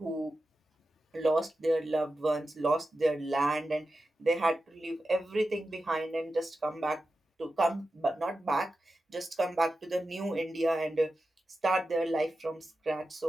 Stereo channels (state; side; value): normal; both; correlation 0.92